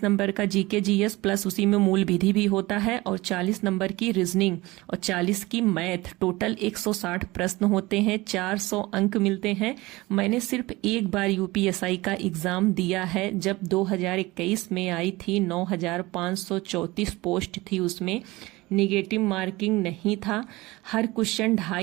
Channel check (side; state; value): left; quieter; 20.8 dB